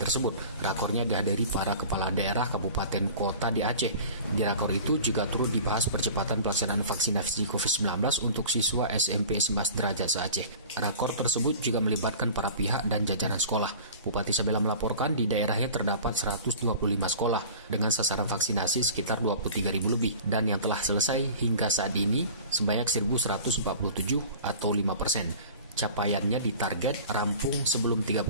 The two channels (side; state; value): both; inverted; correlation -0.40